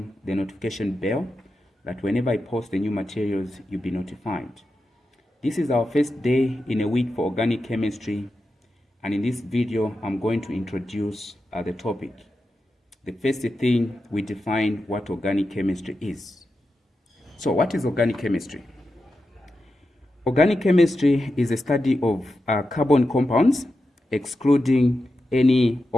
the notification bell that whenever I post the new materials, you'll be notified. This is our first day in a week for organic chemistry, and in this video, I'm going to introduce the topic. The first thing, we define what organic chemistry is. So what is organic chemistry? Organic chemistry is a study of carbon compounds, excluding any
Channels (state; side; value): normal; both; correlation 0.90